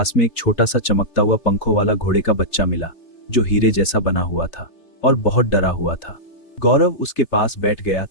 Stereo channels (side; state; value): right; late; 3.3 ms